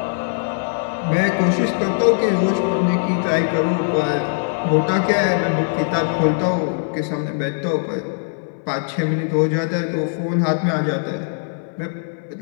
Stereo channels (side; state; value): right; silent; 60 dB below the other